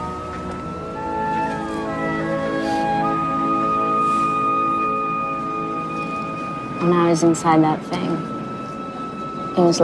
I was inside that thing, it was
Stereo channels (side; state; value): both; identical; correlation 1.00